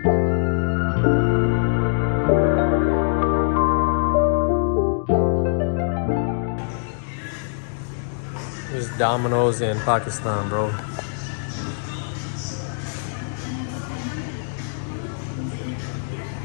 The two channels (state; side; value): silent; right; digital silence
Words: There's Domino's in Pakistan, bro.